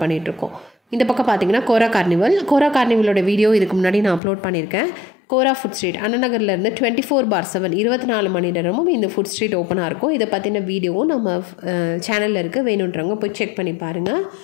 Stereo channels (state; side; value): drops out; right; at 4.2 s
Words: பண்ணிகிட்ருக்கோம். இந்த பக்கம் பார்த்தீங்கன்னா கோரா கார்னிவலோட வீடியோ இதுக்கு முன்னாடி நான் அப்லோட் பண்ணியிருக்கேன். கோரா ஃபுட் ஸ்ட்ரீட் அண்ணநகர்லேருந்து 24/7 24 மணி நேரமும் இந்த ஃபுட் ஸ்ட்ரீட் ஓப்பனாக இருக்கும். இதை பற்றின வீடியோவும் நம்ம சேனலில் இருக்குது, வேணுன்றவங்க போய் செக் பண்ணி பாருங்கள்.